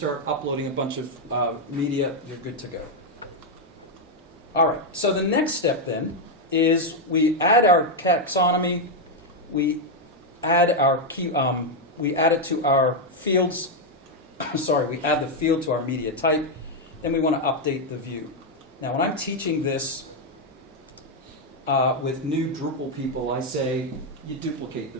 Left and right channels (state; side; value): normal; both; correlation 0.02